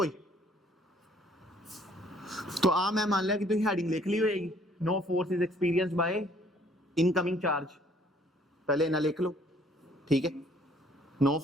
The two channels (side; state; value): both; normal; correlation 0.61